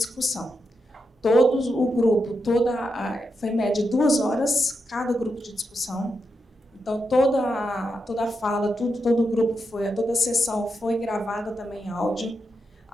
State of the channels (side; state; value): both; normal; correlation 0.85